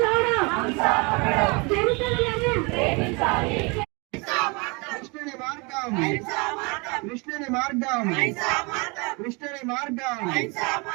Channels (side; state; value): left; quieter; 29.5 dB